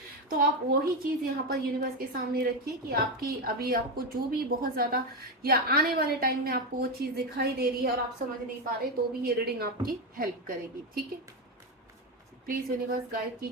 तो आप वही चीज यहाँ पर यूनिवर्स के सामने रखिए कि आपकी अभी आपको जो भी बहुत ज्यादा या आने वाले टाइम में आपको वो चीज दिखाई दे रही है और आप समझ नहीं पा रहे, तो भी ये रीडिंग आपकी हेल्प करेगी, ठीक है। प्लीज यूनिवर्स गाइड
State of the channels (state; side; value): normal; both; correlation 0.11